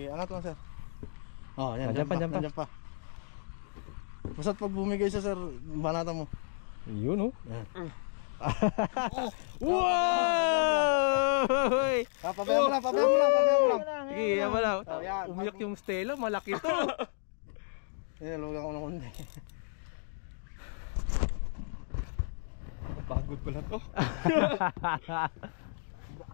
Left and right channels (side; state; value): right; silent; digital silence